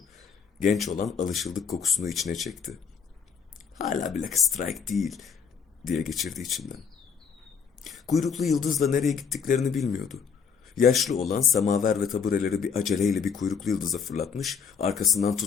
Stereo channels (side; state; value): right; quieter; 6.3 dB